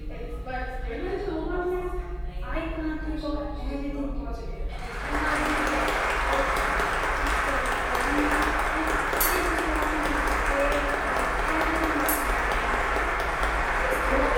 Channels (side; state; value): both; identical; correlation 1.00